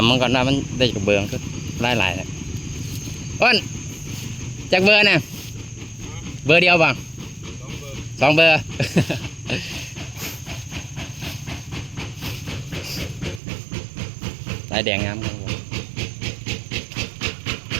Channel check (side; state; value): left; drops out; at 13.4 s